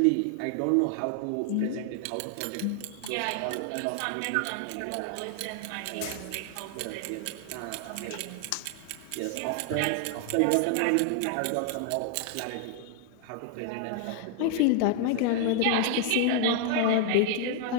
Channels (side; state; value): both; different; correlation 0.00